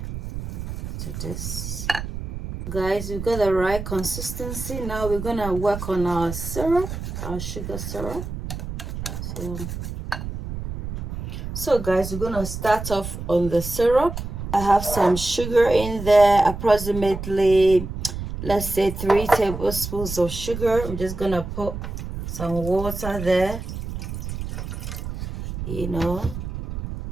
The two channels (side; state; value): right; noise; rumble, 7 dB below the sound